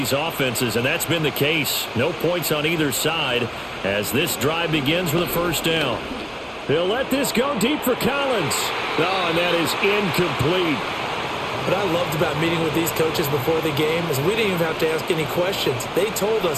offenses, and that's been the case. No points on either side as this drive begins with a 1st down. They'll let this go deep for Collins. Oh, and that is incomplete. What I loved about meeting with these coaches before the game is we didn't even have to ask any questions. They told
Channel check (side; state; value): both; identical; correlation 1.00